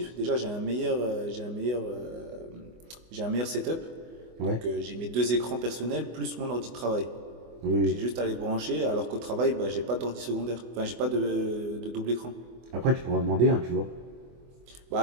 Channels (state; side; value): late; left; 24 ms